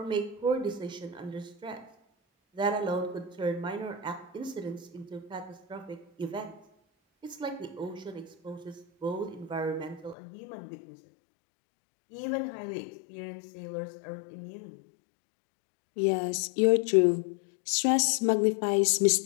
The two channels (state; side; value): drops out; right; at 10.2 s